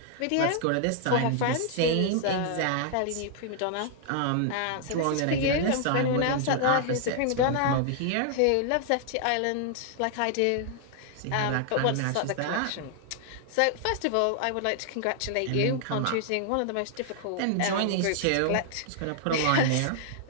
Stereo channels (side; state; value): both; different; correlation 0.00